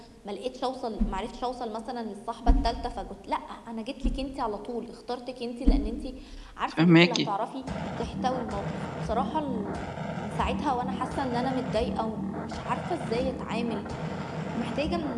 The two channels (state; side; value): identical; both; correlation 1.00